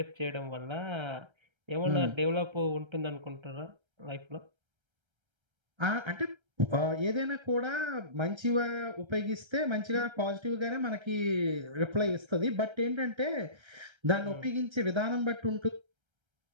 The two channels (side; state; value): left; late; 1.3 ms